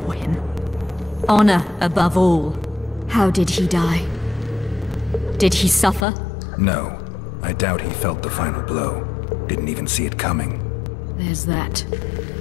him. Honor above all. How did he die? Did he suffer? No. I doubt he felt the final blow. Didn't even see it coming. There's that,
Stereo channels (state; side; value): drops out; right; at 6.1 s